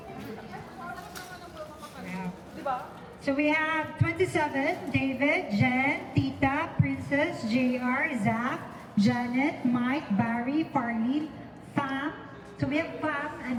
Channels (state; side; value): identical; both; correlation 1.00